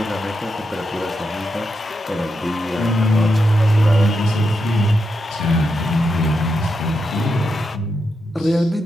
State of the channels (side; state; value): both; normal; correlation 0.85